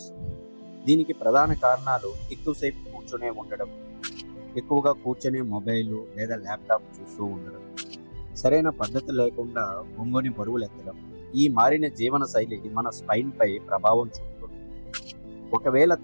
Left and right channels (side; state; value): both; inverted; correlation -1.00